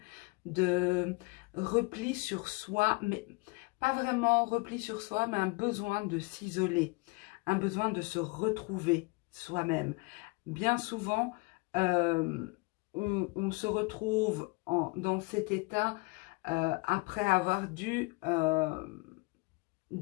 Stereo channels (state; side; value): quieter; right; 27.4 dB